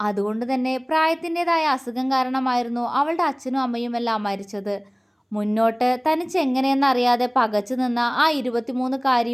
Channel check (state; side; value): identical; both; correlation 1.00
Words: തന്നെ പ്രായത്തിൻ്റെതായ അസുഖം കാരണമായിരുന്നു അവളുടെ അച്ഛനും അമ്മയുമെല്ലാം മരിച്ചത്. മുന്നോട്ട് തനിച്ച് എങ്ങനെയെന്നറിയാതെ പകച്ചു നിന്ന ആ